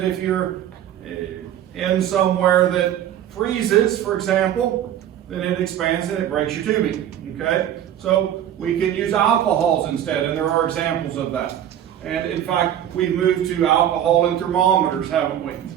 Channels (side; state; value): left; quieter; 10.8 dB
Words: if you're in somewhere that freezes, for example, then it expands and it breaks your tubing, okay? So we can use alcohols instead, and there are examples of that. And in fact, we've moved to alcohol in thermometers, haven't we?